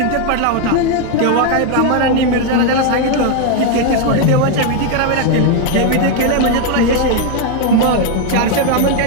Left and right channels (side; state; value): both; different; correlation 0.01